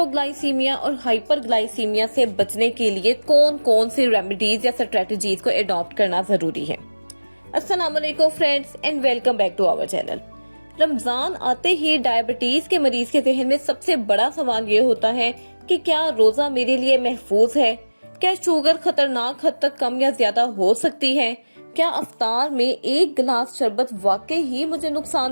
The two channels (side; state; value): both; inverted; correlation -1.00